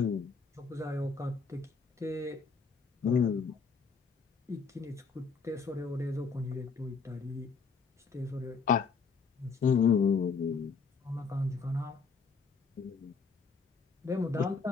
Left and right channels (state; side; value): quieter; right; 5.1 dB